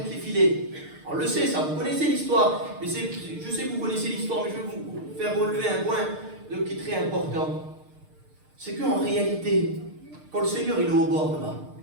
les filets. On le sait, ça, vous connaissez l'histoire. Mais je sais que vous connaissez l'histoire, mais je vais vous faire relever un point qui est très important. C'est qu'en réalité, quand le Seigneur il est au bord là-bas,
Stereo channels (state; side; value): late; left; 6.6 ms